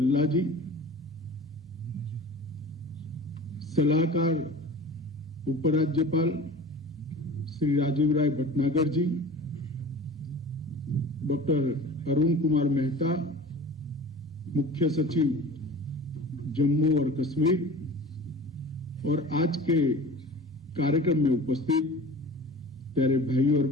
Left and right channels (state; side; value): normal; both; correlation 0.39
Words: जी, सलाहकार उपराज्यपाल श्री राजीव राय भटनागर जी, डॉक्टर अरुण कुमार मेहता, मुख्य सचिव जम्मू और कश्मीर, और आज के कार्यक्रम में उपस्थित प्यारे भाई और